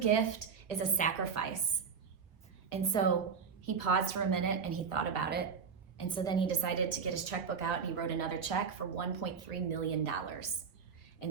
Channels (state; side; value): quieter; left; 6.2 dB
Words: is a sacrifice." And so he paused for a minute and he thought about it. And so then he decided to get his checkbook out and he wrote another check for $1.3 million.